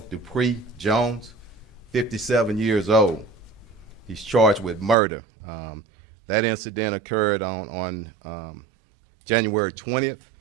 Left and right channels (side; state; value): left; drops out; at 5.0 s